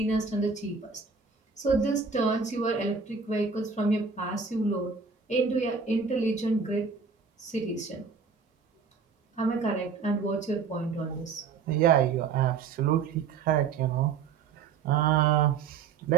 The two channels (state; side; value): quieter; left; 5.5 dB